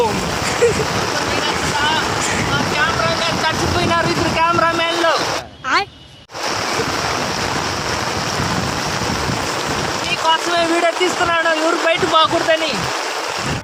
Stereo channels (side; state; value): both; identical; correlation 1.00